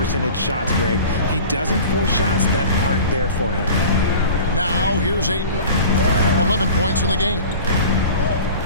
shots, Greg. He doesn't force shots that aren't there for him. Now, here's Ayton. 11 points in the game.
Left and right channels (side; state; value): both; inverted; correlation -0.39